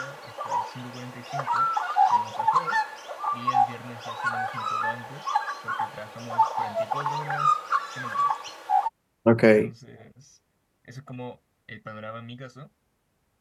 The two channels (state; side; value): identical; both; correlation 1.00